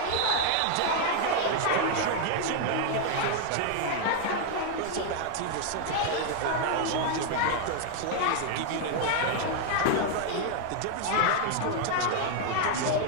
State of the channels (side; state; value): both; different; correlation 0.00